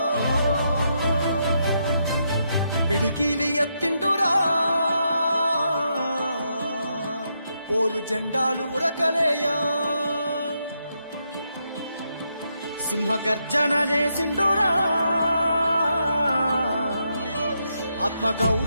పిడికిలి ఎత్తిండురా పోరు జెండాలు ఉరకలేయా సింహ గర్జన చేసిండురా ఆత్మ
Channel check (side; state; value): both; inverted; correlation -0.80